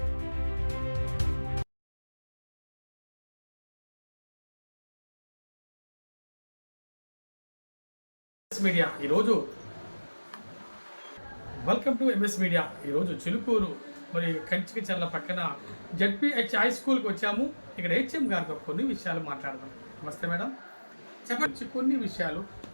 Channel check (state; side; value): inverted; both; correlation -1.00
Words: మీడియా ఈరోజు వెల్కమ్ టు ఎంఎస్ మీడియా. ఈరోజు చిలుకూరు మరి కంచికచర్ల పక్కన జెడ్పీహెచ్ హై స్కూల్కి వచ్చాము. ఇక్కడ హెచ్ఎం గారితో కొన్ని విషయాలు మాట్లాడదాం. నమస్తే మేడం, చెప్పండి కొన్ని విషయాలు